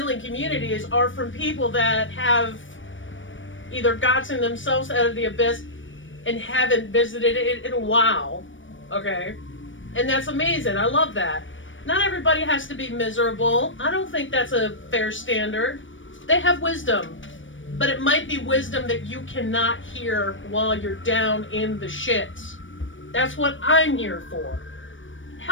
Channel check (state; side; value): late; right; 0.56 ms